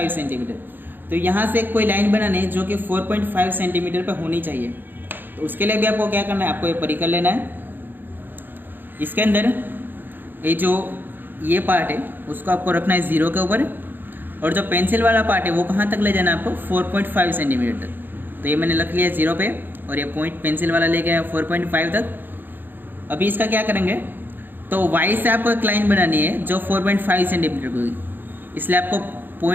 centimetre. तो यहाँ से कोई लाइन बनानी है जो कि 4.5 सेंटीमीटर पर होनी चाहिए। तो उसके लिए भी आपको क्या करना है, आपको ये परिकर लेना है। इसके अंदर ये जो ये पार्ट है उसको आपको रखना है 0 के ऊपर, और जो पेंसिल वाला पार्ट है वो कहाँ तक ले जाना है आपको, 4.5 सेंटीमीटर तक। तो ये मैंने रख लिया 0 पे और ये पॉइंट पेंसिल वाला ले गया 4.5 तक। अभी इसका क्या करेंगे, तो y से आपको एक लाइन बनानी है जो 4.5 सेंटीमीटर की होगी, इसलिए आपको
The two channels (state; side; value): late; left; 0.093 ms